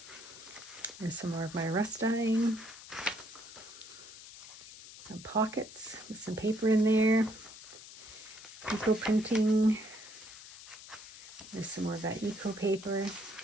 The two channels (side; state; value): left; noise; hiss, 16 dB below the sound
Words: There's some more of my rust dyeing. Some pockets with some paper in there. Eco printing. There's some more of that eco paper.